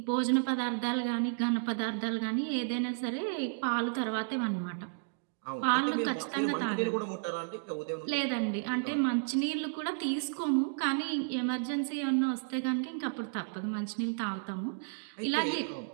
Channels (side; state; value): left; silent; digital silence